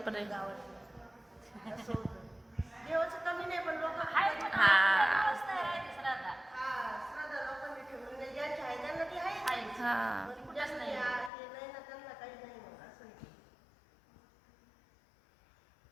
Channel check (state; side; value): drops out; right; at 11.3 s